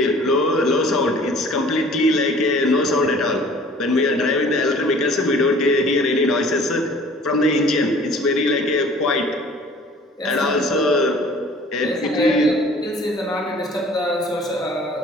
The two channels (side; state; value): both; normal; correlation 0.50